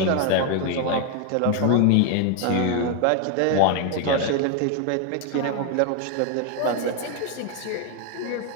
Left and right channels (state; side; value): different; both; correlation 0.01